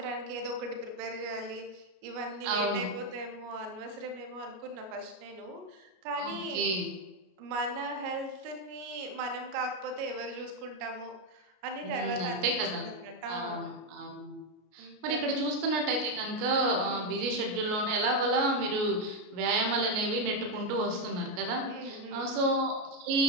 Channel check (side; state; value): left; late; 33 ms